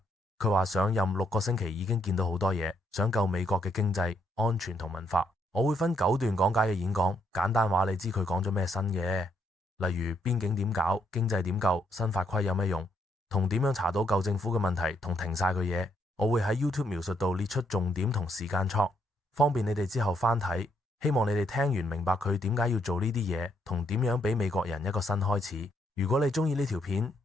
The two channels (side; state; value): both; normal; correlation 0.73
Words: 佢話上任6個星期已經見到好多嘢，想救美國嘅經濟、安全同文化。我會分9段講解嘅演講，簡單話你知佢講咗咩新嘅，例如邊境點搞、經濟點救、新法規有咩用，同點樣查到舊政府嘅問題同停晒佢嘢。我會喺 YouTube 描述度列出重點同時間戳，方便你哋之後翻睇。希望你哋聽完明白佢點解要做呢啲嘢，同點樣俾美國人一個新開始。如果你中意呢條片，